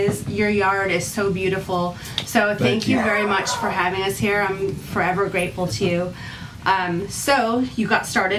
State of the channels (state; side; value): identical; both; correlation 1.00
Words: Your yard is so beautiful. So thank you very much for having us here. I'm forever grateful to you. So you got